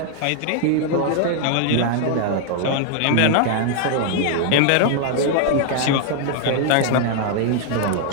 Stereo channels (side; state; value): both; different; correlation 0.00